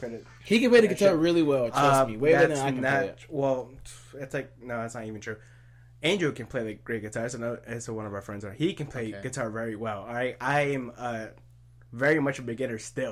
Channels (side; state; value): both; identical; correlation 1.00